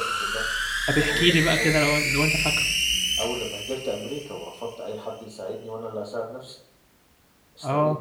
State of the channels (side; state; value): both; identical; correlation 1.00